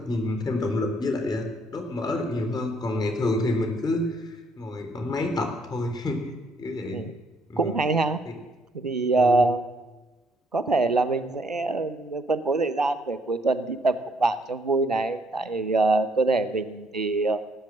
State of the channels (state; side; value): normal; both; correlation 0.69